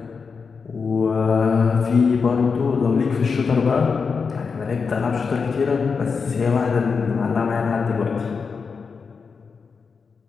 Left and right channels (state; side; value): quieter; right; 5.3 dB